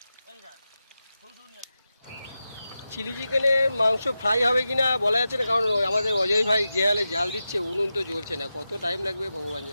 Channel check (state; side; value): inverted; both; correlation -0.91